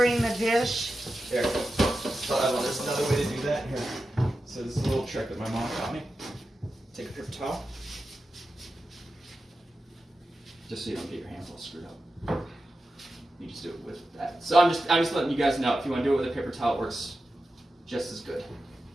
the dish? Here. So there's another way to do that. Here. So this is a little trick that my mom taught me. Take a paper towel. Just so you don't get your hands all screwed up. You just do it with that. So I'm just letting you guys know, if you want to do it with a paper towel, it works just as good.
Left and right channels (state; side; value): normal; both; correlation 0.91